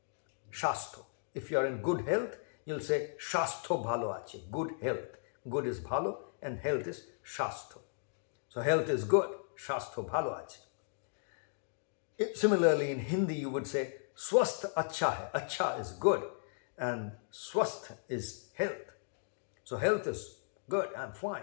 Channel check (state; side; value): silent; right; digital silence